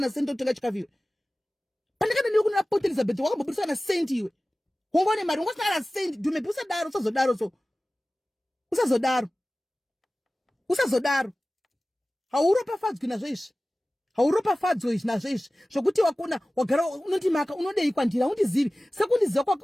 senti otenga chikafu iwe pandakana nekuna Port Elizabeth kwakamboburisa na senti iwe wongone mari wongosina na senti Dumebi usazodaro hauropafadzwi nazvo izvi hauropafadzwi nazvo izvi zvokuti wakona wagara unoti maka unodei kwandira undizivi sekundiziva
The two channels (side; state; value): both; normal; correlation 0.97